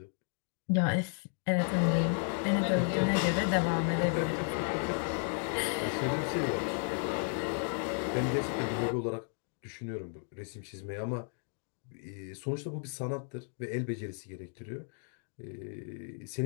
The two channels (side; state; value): right; silent; 55 dB below the other